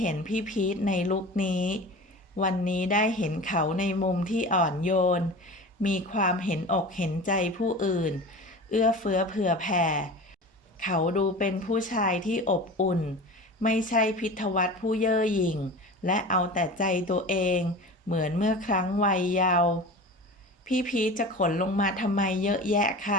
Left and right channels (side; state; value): both; normal; correlation 0.34